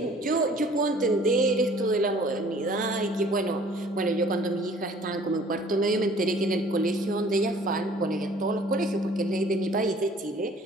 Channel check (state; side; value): normal; both; correlation 0.53